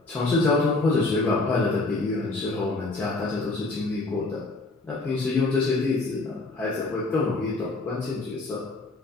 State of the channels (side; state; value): right; quieter; 3.2 dB